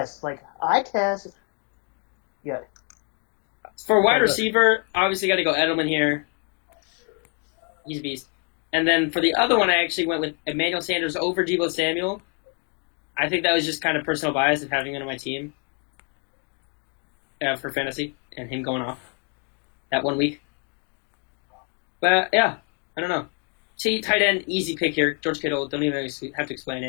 Eye test. Yeah. For wide receiver, obviously got to go Edelman here. He's a beast. And then for the other one, I actually went with Emmanuel Sanders over Deebo Samuel. I think that was just kind of personal bias of having him on my team for fantasy and him going off that 1 week. But yeah, I don't know. Tight end, easy pick here. George Kittle, don't even have to explain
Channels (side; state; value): right; quieter; 38.6 dB